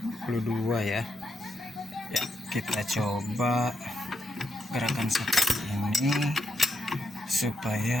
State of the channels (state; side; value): normal; both; correlation 0.81